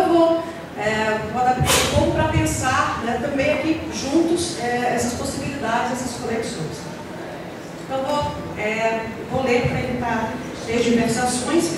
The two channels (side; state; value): both; identical; correlation 1.00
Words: vou adaptar um pouco para pensar, né, também aqui juntos essas possibilidades, essas conexões. Então vou ler para evitar diversações que